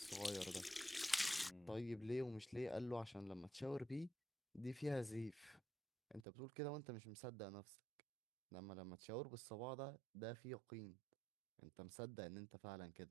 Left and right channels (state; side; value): drops out; left; at 6.2 s